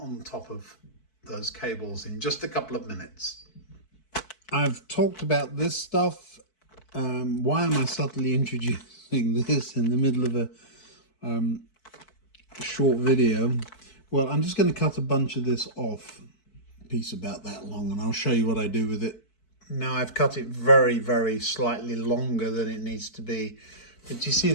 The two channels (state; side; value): late; right; 4.6 ms